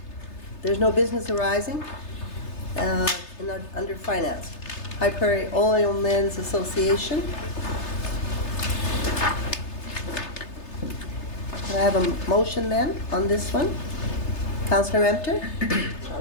there's no business arising under finance. High Prairie Oilmen's Association. Can I have a motion then on this one? Councillor Emter?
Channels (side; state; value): right; late; 3.3 ms